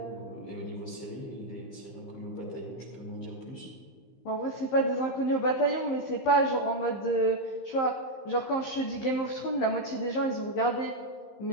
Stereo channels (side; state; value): right; late; 15 ms